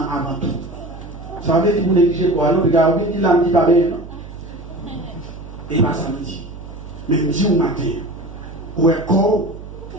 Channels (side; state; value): right; noise; hum, 14 dB below the sound